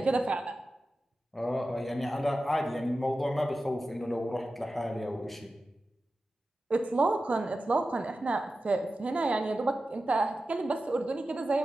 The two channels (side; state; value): both; normal; correlation 0.93